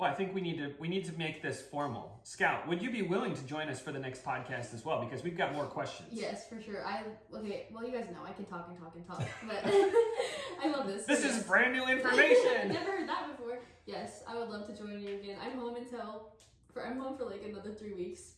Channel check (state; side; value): identical; both; correlation 1.00